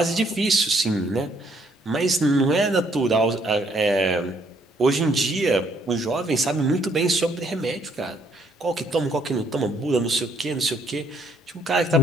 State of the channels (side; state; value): both; normal; correlation 0.68